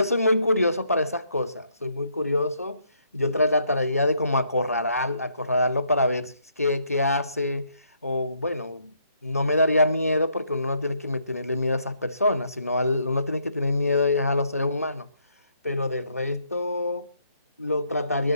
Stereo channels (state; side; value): inverted; both; correlation -0.72